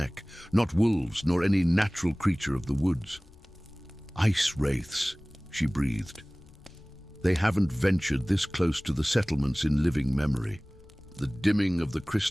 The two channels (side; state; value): left; noise; rumble, 25 dB below the sound